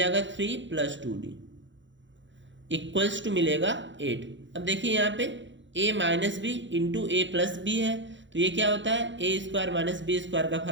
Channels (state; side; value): late; left; 0.54 ms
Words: 3 प्लस 2D इक्वल्स टू मिलेगा 8। अब देखिए यहाँ पे A minus B into A plus B है तो ये क्या होता है A square minus B square का